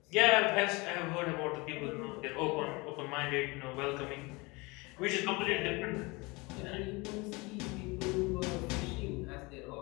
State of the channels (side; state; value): right; quieter; 25.5 dB